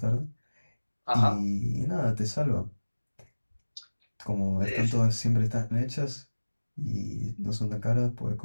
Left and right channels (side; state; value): both; inverted; correlation -1.00